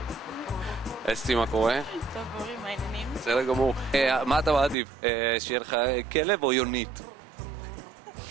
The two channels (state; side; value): drops out; left; at 4.8 s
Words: אסתי, מה קורה? טוב, אורי, מה העניינים? בסדר גמור. מה אתה מעדיף? שיהיה לך כלב או יונית?